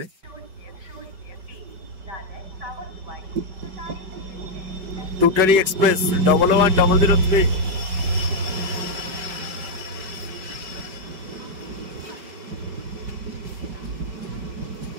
টুটারি এক্সপ্রেস 11003।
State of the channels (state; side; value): late; left; 5.1 ms